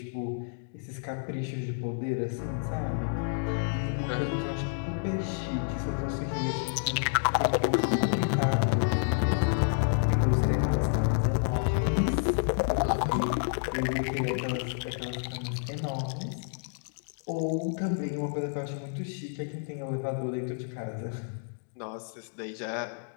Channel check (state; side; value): silent; right; digital silence